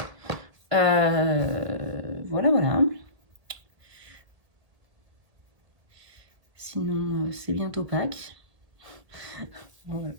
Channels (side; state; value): left; late; 1.6 ms